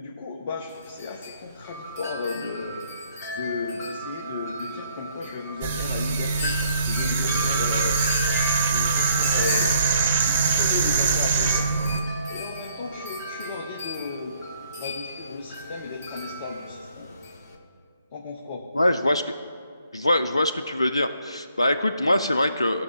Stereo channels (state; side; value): inverted; both; correlation -0.67